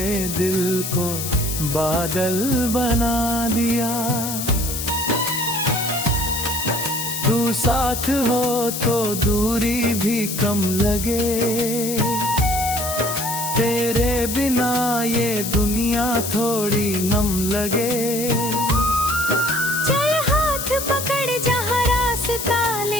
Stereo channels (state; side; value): noise; left; hiss, 5 dB below the sound